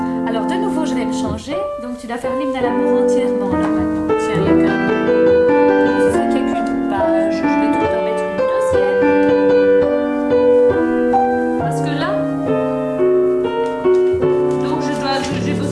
Alors, de nouveau, je vais me changer. Donc, tu dois faire l'hymne à l'amour entièrement, là, maintenant. Tiens, il y a qu'un... Ce serait qu'il y a qu'une page. Je vais tout en mettre une deuxième. Parce que là... Donc, j'ai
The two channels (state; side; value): identical; both; correlation 1.00